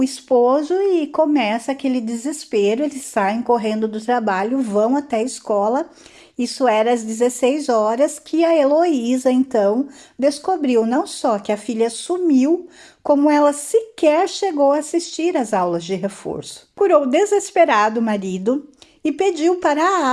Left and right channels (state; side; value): identical; both; correlation 1.00